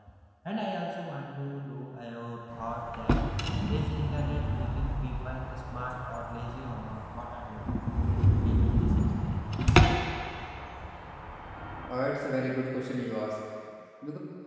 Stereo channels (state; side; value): identical; both; correlation 1.00